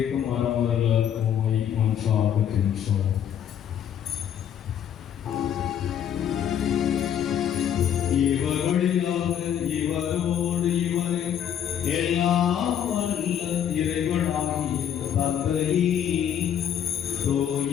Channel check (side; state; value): right; quieter; 9.4 dB